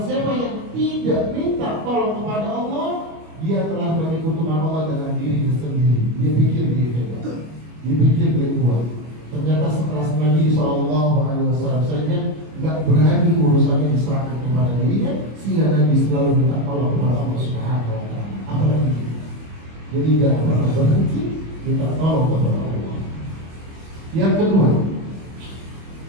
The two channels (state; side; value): late; left; 25 ms